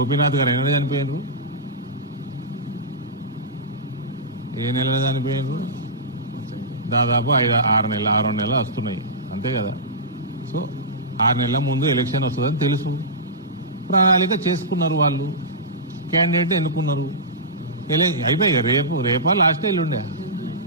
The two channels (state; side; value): normal; both; correlation -0.17